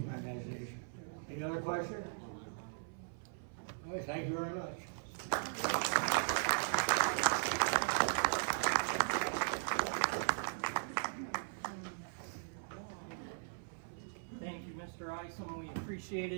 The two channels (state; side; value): silent; left; 52 dB below the other